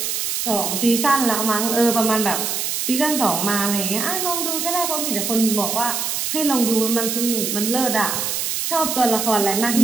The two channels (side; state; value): right; noise; hiss, 1 dB below the sound